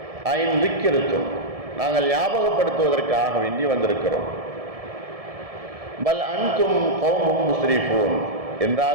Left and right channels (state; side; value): late; left; 1.7 ms